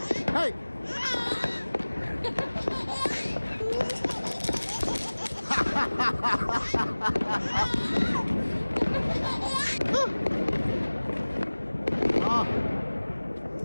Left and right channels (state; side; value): inverted; both; correlation -1.00